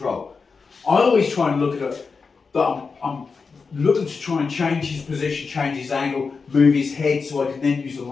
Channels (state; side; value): quieter; right; 4.9 dB